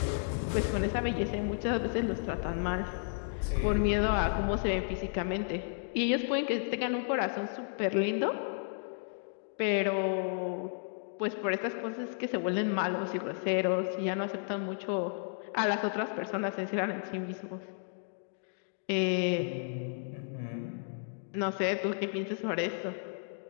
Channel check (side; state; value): right; silent; digital silence